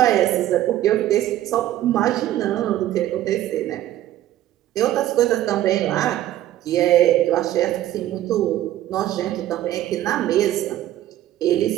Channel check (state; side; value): quieter; left; 13.5 dB